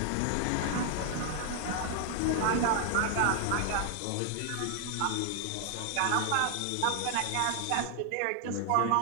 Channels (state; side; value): different; both; correlation 0.00